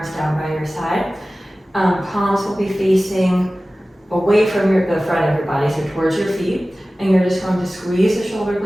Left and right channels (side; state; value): both; normal; correlation 0.97